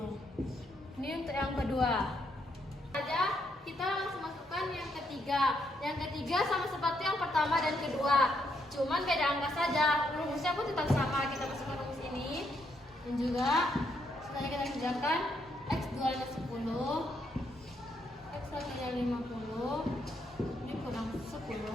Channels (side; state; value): both; normal; correlation 0.76